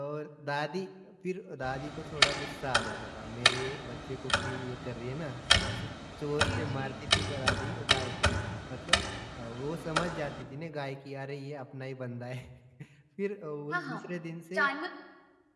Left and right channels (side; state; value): both; identical; correlation 1.00